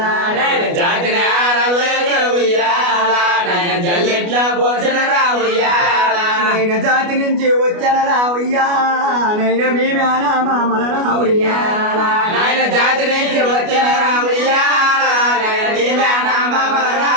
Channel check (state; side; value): late; left; 29 ms